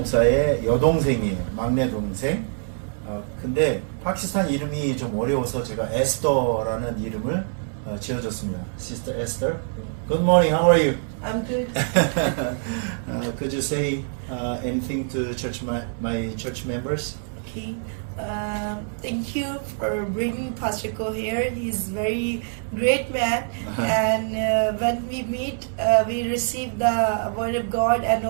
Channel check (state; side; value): silent; left; 62 dB below the other